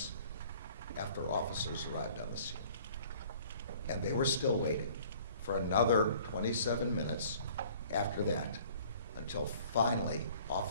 after officers arrived on the scene. And they were still waiting for another 27 minutes after that until finally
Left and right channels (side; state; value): both; inverted; correlation -0.53